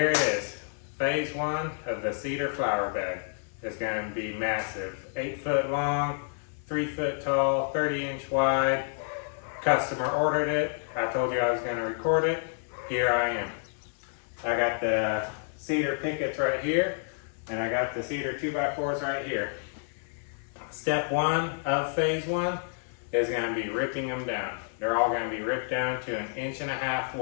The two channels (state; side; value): silent; right; digital silence